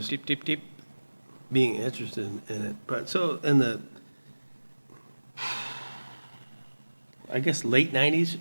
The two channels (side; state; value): both; inverted; correlation -1.00